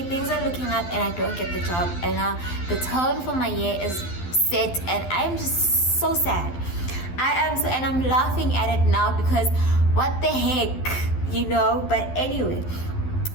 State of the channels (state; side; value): late; right; 12 ms